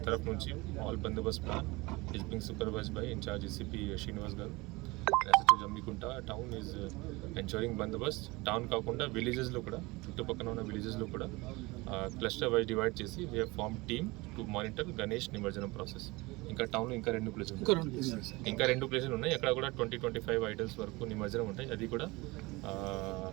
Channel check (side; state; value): left; quieter; 23.2 dB